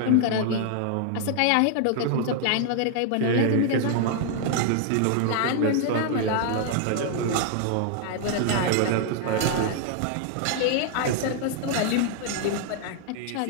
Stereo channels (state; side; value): different; both; correlation 0.00